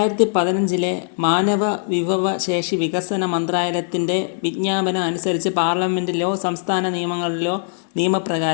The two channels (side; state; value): right; silent; digital silence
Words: മാനവ വിഭവ ശേഷി വികസന മന്ത്രാലയത്തിൻ്റെ വിജ്ഞാപനം അനുസരിച്ച് പാർലമെൻറ്റിലോ സംസ്ഥാന നിയമങ്ങളിലോ